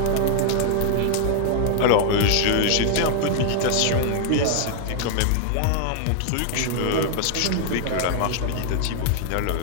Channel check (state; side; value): different; both; correlation 0.00